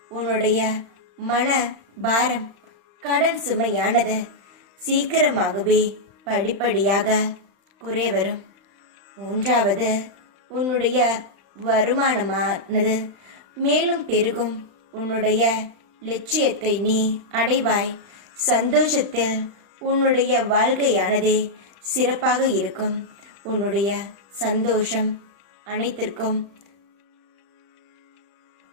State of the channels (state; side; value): late; left; 35 ms